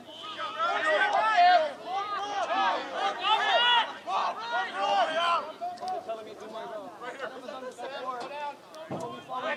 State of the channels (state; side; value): identical; both; correlation 1.00